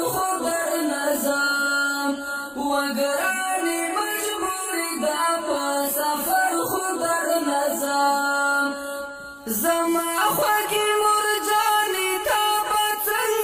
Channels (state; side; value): identical; both; correlation 1.00